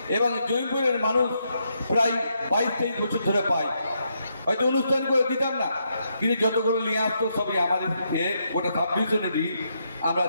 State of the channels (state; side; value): inverted; both; correlation -0.79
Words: এবং জয়পুরের মানুষ প্রায় 22-23 বছর ধরে পায়। হয়তো অনুষ্ঠান করে দিতাম না, কিন্তু যতগুলো নিয়ে আসতো সবই আমাদের গোটা সাবডিভিশনেরই। আমরা